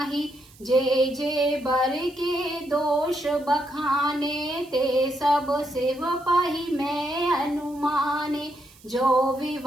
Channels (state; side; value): noise; right; hiss, 26 dB below the sound